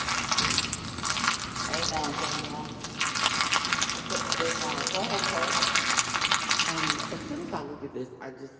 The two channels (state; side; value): identical; both; correlation 1.00